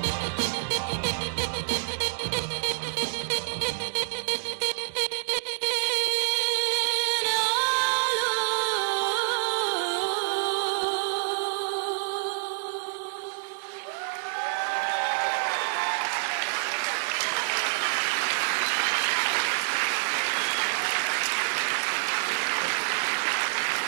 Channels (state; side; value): silent; left; digital silence